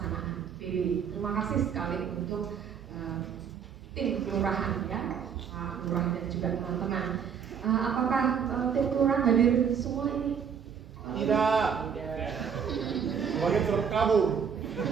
PB. Terima kasih sekali untuk tim kelurahan, ya, Pak Lurah dan juga teman-teman. Apakah tim kelurahan hadir semua ini? Tidak. Sebagai terkabur.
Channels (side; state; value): left; quieter; 7.3 dB